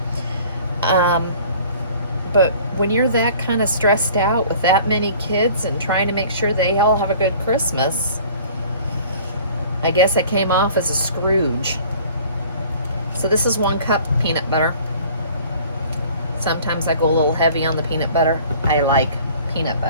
But when you're that kind of stressed out with that many kids and trying to make sure they all have a good Christmas, I guess I came off as a Scrooge. So this is 1 cup peanut butter. Sometimes I go a little heavy on the peanut butter. I like peanut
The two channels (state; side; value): inverted; both; correlation -0.49